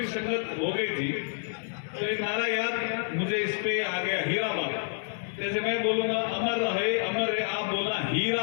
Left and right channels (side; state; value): right; silent; 59 dB below the other